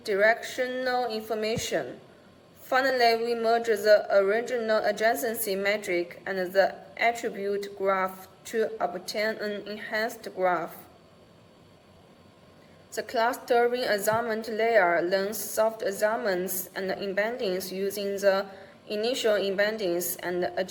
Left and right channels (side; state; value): both; identical; correlation 1.00